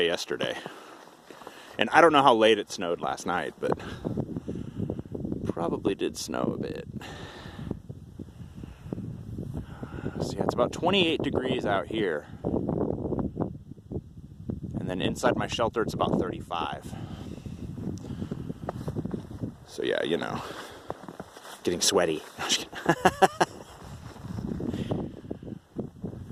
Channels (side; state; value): both; identical; correlation 1.00